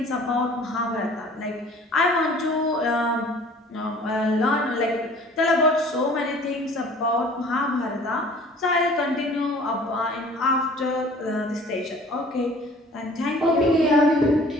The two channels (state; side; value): normal; both; correlation 0.49